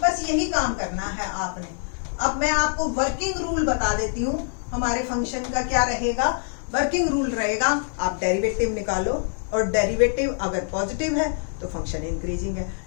बस यही काम करना है आपने। अब मैं आपको वर्किंग रूल बता देती हूँ, हमारे फंक्शन का क्या रहेगा। वर्किंग रूल रहेगा, आप डेरिवेटिव निकालो और डेरिवेटिव अगर पॉजिटिव है तो फंक्शन इंक्रीजिंग है,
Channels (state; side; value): silent; right; 62 dB below the other